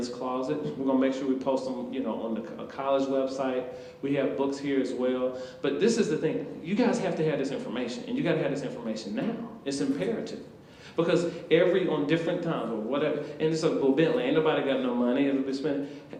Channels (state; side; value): identical; both; correlation 1.00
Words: closet. We're gonna make sure we post them, on the college website. We have books here as well. But this is the thing, you guys have to have this information, and you gotta have this information now. It's imperative. Because on different times, or whatever, and it's like, well, Bentley, ain't nobody got no money, it'll be spent.